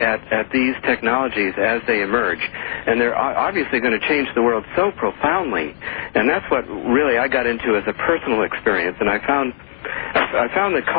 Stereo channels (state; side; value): silent; right; digital silence